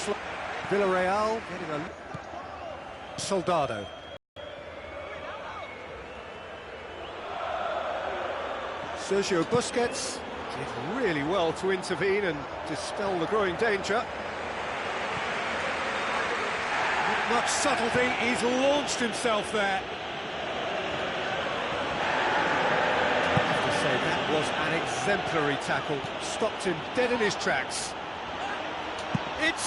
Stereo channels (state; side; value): identical; both; correlation 1.00